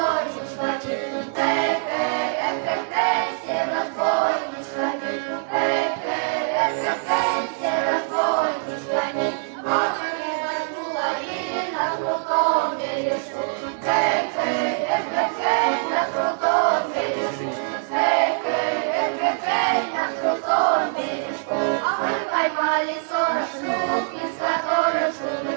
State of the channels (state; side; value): silent; left; digital silence